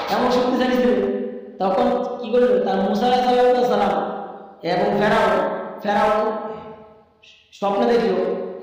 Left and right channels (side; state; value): both; identical; correlation 1.00